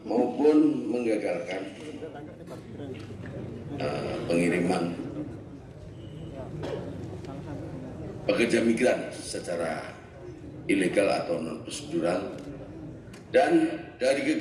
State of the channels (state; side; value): identical; both; correlation 1.00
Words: maupun menggagalkan pengiriman pekerja migran secara ilegal atau non prosedural. Dan dari